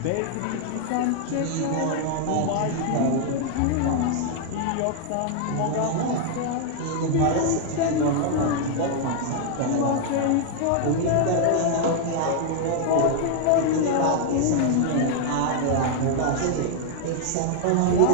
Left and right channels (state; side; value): different; both; correlation 0.00